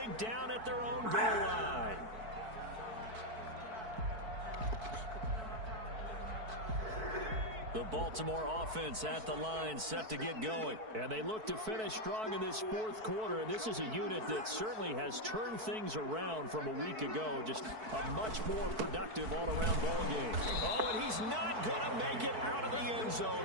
down at their own goal line. The Baltimore offense at the line, set to get going. And they look to finish strong in this 4th quarter. And this is a unit that certainly has turned things around from a week ago. Just a much more productive all-around ball game. Oh, and he's not going to make it out of the end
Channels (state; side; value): late; left; 4.6 ms